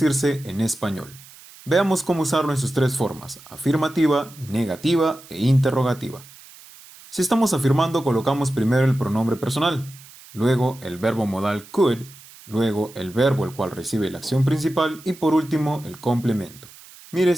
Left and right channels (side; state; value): right; noise; hiss, 21 dB below the sound